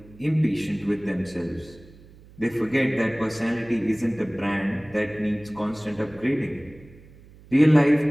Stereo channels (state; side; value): noise; right; hum, 23 dB below the sound